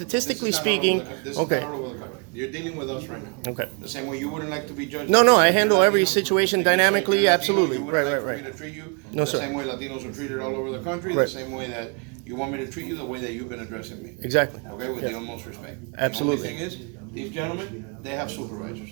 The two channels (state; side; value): quieter; left; 35.0 dB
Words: this is not all speaking. over the- This is Okay. not all over the country. You're dealing with us right now. Okay. The same way you wouldn't like to be judged. No, like no, you I said, handle you're every Latino, situation like you said, dynamically, you're Latino, absolutely. You wouldn't Right, like right, for me right. to treat you No, the sir. same way Latinos are treated all over the country, Right. the same way that you want me to treat you the way that you've been addressing me. Exactly. Okay, with Yeah. the utmost respect. Absolutely. The only thing is, these gentlemen, they have supervisors.